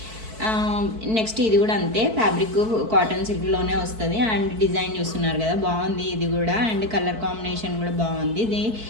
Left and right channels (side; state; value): left; late; 4.5 ms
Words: నెక్స్ట్ ఇది కూడా అంతే, ఫ్యాబ్రిక్ కాటన్ సిల్క్లోనే వస్తుంది. అండ్ డిజైన్ చూస్తున్నారు కదా బాగుంది ఇది కూడా. అండ్ కలర్ కాంబినేషన్ కూడా బాగుంది. ఇది